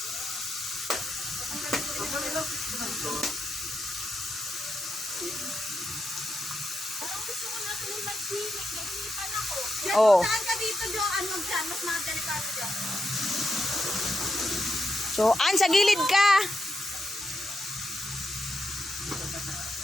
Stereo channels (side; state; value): both; normal; correlation 0.84